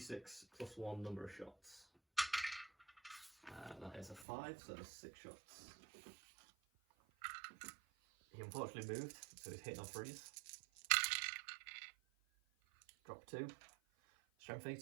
plus 1 number of shots. That is a 5, so that's 6 shots. He unfortunately moved, so he's hitting on freeze. Drop 2. Strength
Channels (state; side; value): drops out; left; at 4.2 s